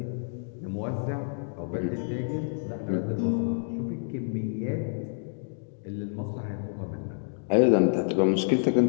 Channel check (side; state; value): right; silent; digital silence